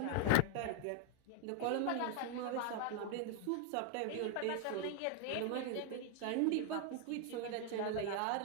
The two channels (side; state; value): both; different; correlation 0.00